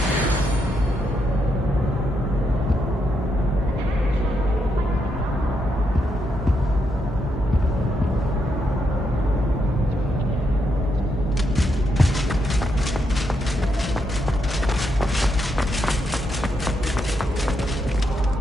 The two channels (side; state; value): both; normal; correlation 0.80